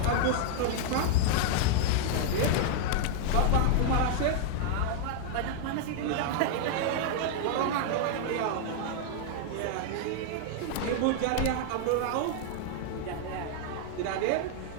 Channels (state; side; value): different; both; correlation 0.00